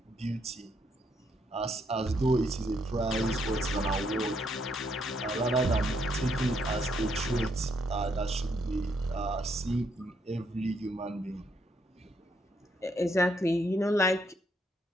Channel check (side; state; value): both; normal; correlation 0.74